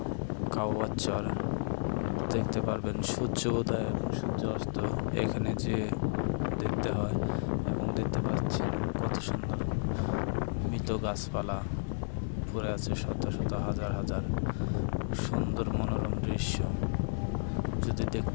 কাওয়ার চর দেখতে পারবেন সূর্য উদয় এবং সূর্য অস্ত এখানে যে দেখতে হয়। এবং দেখতে পাচ্ছেন কত সুন্দর মৃত গাছপালা পড়ে আছে, শত শত হাজার হাজার সুন্দর মনোরম দৃশ্য। যদি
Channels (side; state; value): right; silent; digital silence